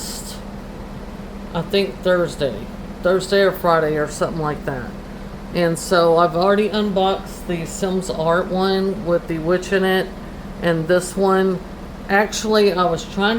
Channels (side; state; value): both; identical; correlation 1.00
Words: I think Thursday or Friday or something like that. And so I've already unboxed the Sims Art one with the witch in it, and this one, actually I was trying